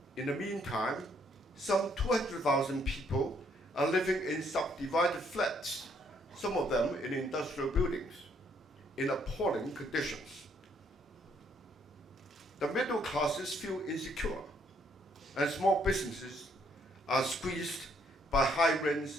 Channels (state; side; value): normal; both; correlation 0.68